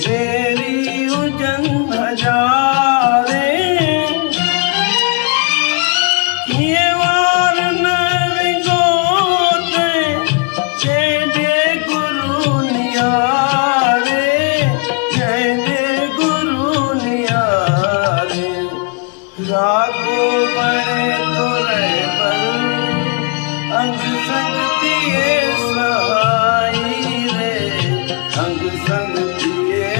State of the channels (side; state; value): right; quieter; 34.5 dB